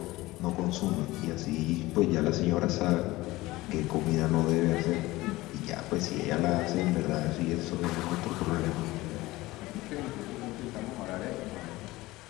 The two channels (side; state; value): right; quieter; 19.2 dB